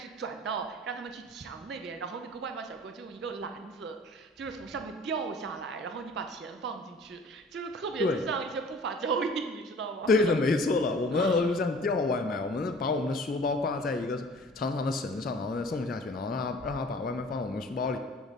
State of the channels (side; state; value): both; normal; correlation 0.48